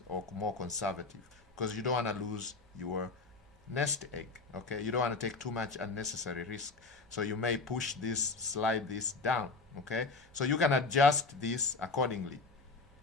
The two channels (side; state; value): right; quieter; 3.9 dB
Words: or more conservative because you don't want to lose your nest egg. Okay, you don't want to take too much unnecessary risk, so you may push this, slide this down. Okay, so you can adjust this accordingly.